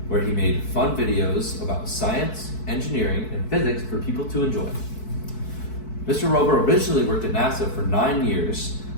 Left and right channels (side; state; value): right; late; 4.6 ms